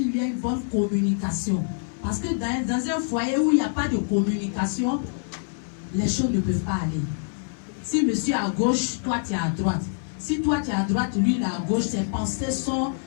y ait une bonne communication. Parce que dans un foyer où il n'y a pas de communication, les choses ne peuvent pas aller. Si monsieur est à gauche, toi tu es à droite. Si toi tu es à droite, lui il est à gauche, ses pensées sont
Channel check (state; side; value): silent; right; 61 dB below the other